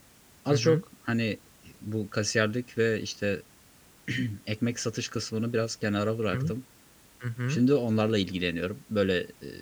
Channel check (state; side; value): identical; both; correlation 1.00